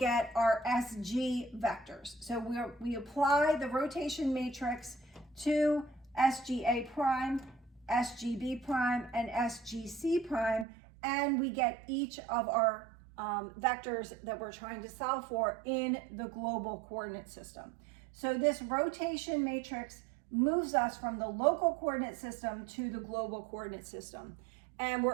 our SG vectors. So we apply the rotation matrix to SGA prime, SGB prime, and SGC prime, and we get each of our vectors that we're trying to solve for in the global coordinate system. So this rotation matrix moves us from the local coordinate system to the global coordinate system, and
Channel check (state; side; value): drops out; left; at 10.7 s